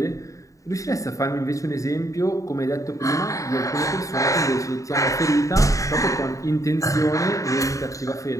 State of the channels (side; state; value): right; late; 0.16 ms